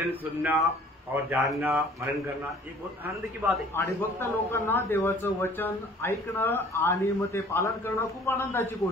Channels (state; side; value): normal; both; correlation 0.52